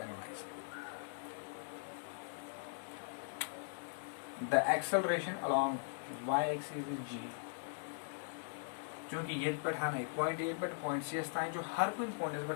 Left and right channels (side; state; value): right; silent; 51 dB below the other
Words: the acceleration along y axis is g क्योंकि ये पठाना है पॉइंट ए पर पॉइंट सी स्थान जो हर कोई पॉइंट है